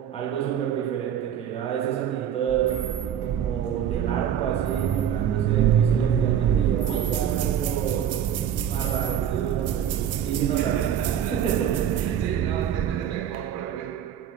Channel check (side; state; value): left; quieter; 9.5 dB